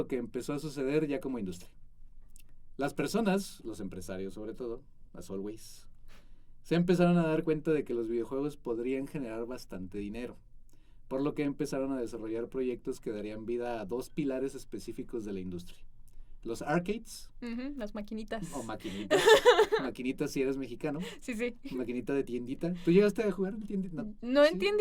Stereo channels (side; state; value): both; identical; correlation 1.00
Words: que empezó a suceder ya como industria. Las personas, los empresarios sobre todo, as always, se empezaron a dar cuenta de que los videojuegos podrían generar bastante dinero, por lo que empezaron a desarrollar proyectos que darían vida a dos pilares específicos de la industria. Los arcades, Las maquinitas. o maquinitas. Maquinitas si eres mexicano. Sí, sí. Maquinita de tiendita. ¿Tú llegaste a jugar en tiendita? No en ¿Sí?